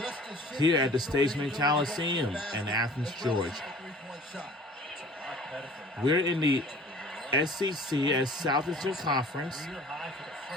here at the Stageman Coliseum in Athens, Georgia. We're in the SEC as Southeastern Conference.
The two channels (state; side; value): normal; both; correlation 0.47